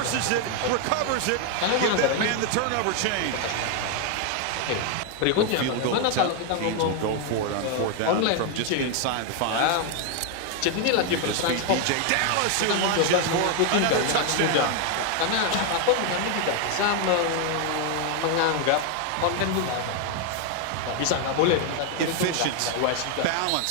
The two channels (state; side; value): different; both; correlation 0.01